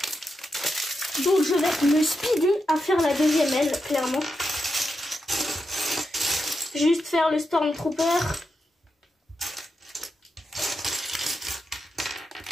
Donc je vais me speeder à faire la deuxième aile, clairement. Juste faire le Stormtrooper.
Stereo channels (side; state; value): both; normal; correlation 0.86